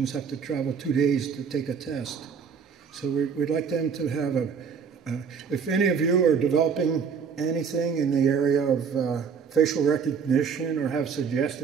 have to travel 2 days to take a test. So we'd like them to have if any of you are developing anything in the area of facial recognition or have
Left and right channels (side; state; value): left; quieter; 6.4 dB